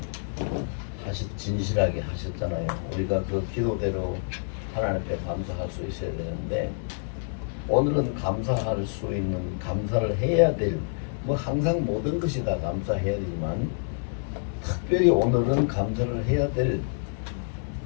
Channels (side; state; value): right; silent; 60 dB below the other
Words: 진실하게 하셨잖아요. 우리가 그 기도대로 하나님 앞에 감사할 수 있어야 되는데 오늘은 감사할 수 있는 감사를 해야 될 뭐 항상 모든 것이 다 감사해야 되지만 특별히 오늘은 감사를 해야 될